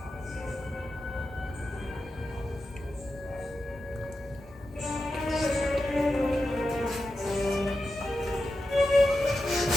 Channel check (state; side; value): normal; both; correlation 0.90